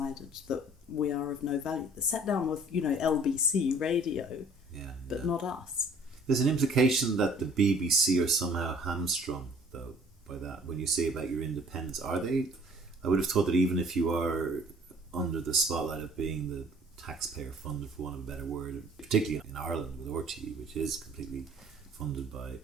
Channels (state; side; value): normal; both; correlation 0.54